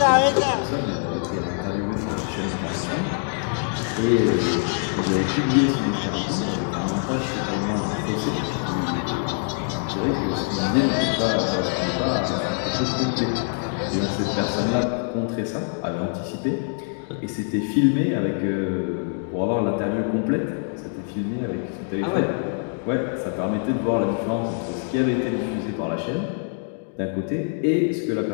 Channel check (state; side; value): silent; right; 56 dB below the other